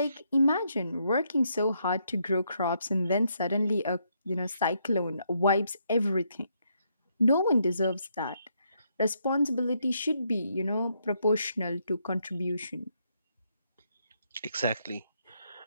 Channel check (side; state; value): both; inverted; correlation -0.76